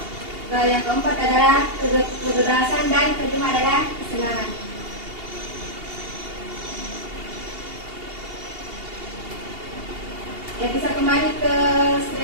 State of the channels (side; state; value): left; late; 2.8 ms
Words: yang keempat adalah kebebasan, dan kelima adalah kesenangan. Ya, bisa kembali ke